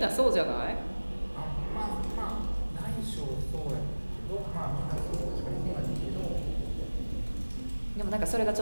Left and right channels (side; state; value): both; inverted; correlation -1.00